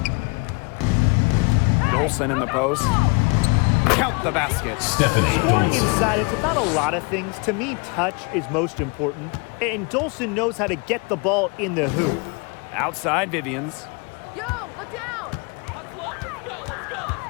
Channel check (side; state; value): right; quieter; 30.9 dB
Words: Dolson in the post. Count the basket. Stephanie Scoring Dolson. inside, it's about a lot of things. To me, touch is most important, and Dolson knows how to get the ball in the hoop. Outside Vivians. Yo, look down!